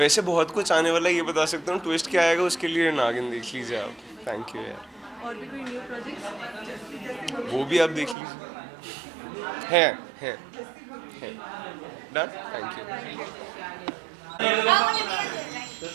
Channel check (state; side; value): drops out; left; at 8.2 s